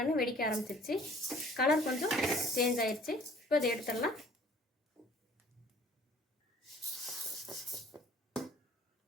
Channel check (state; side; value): normal; both; correlation 0.52